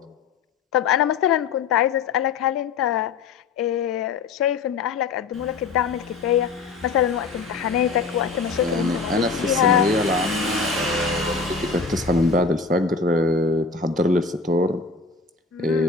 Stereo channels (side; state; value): right; quieter; 4.7 dB